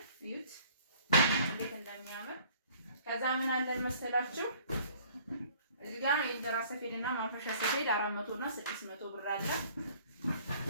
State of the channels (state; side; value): inverted; both; correlation -0.54